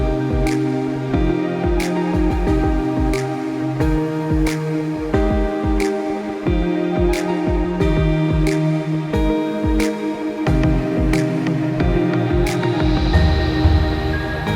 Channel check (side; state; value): both; identical; correlation 1.00